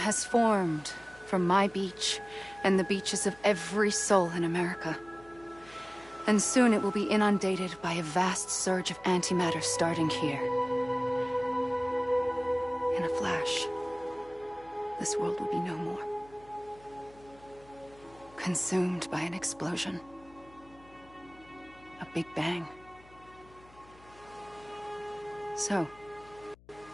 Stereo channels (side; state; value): left; noise; hum, 25 dB below the sound